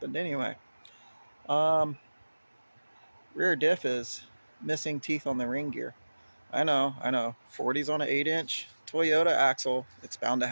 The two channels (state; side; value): inverted; both; correlation -1.00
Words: anyway. Um, Rear diff is missing teeth on the ring gear. I know. 40s on an 8-inch Toyota axle, it's bound to